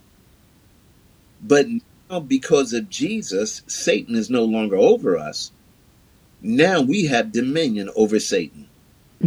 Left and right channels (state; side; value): identical; both; correlation 1.00